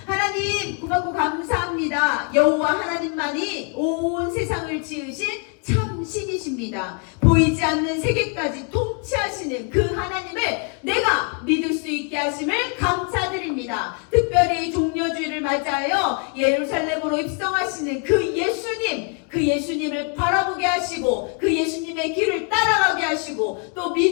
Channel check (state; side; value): quieter; right; 37.4 dB